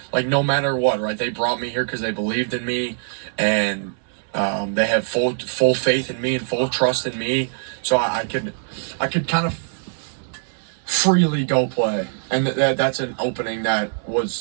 like, no matter what, right? They brought me here because they believed in me, and they had full faith in me and full trust in me, so I could kind of freely go play, and that's an opening that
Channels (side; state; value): left; silent; digital silence